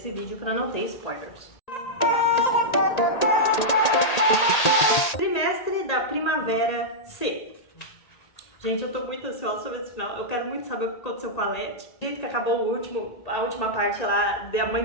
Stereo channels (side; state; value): right; late; 1.8 ms